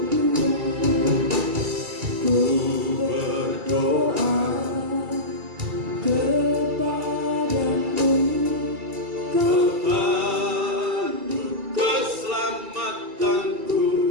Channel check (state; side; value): late; left; 2.3 ms